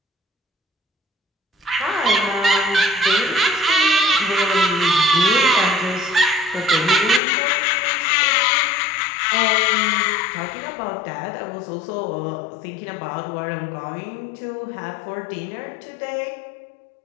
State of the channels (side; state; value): right; drops out; at 7.2 s